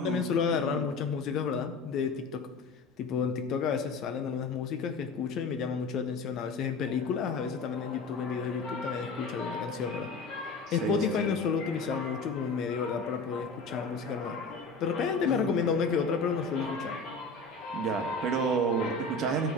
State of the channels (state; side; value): quieter; right; 3.5 dB